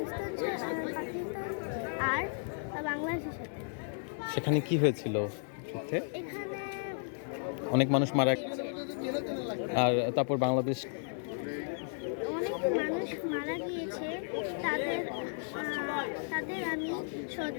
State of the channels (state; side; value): silent; right; digital silence